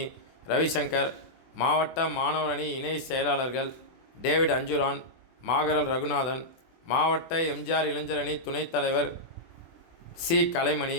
ரவிசங்கர், மாவட்ட மாணவர் அணி இணை செயலாளர்கள் டேவிட் அஞ்சுரான், மாகரல் ரகுநாதன், மாவட்ட எம்ஜிஆர் இளைஞர் அணி துணைத் தலைவர் சி கலைமணி,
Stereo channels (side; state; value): right; late; 24 ms